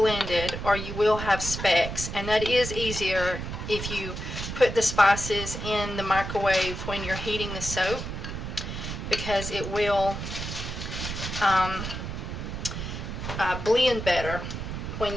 or you will have specks, and that is easier if you put the spices in the microwave when you're heating the soap, because it will blend better when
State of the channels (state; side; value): noise; right; rumble, 6 dB below the sound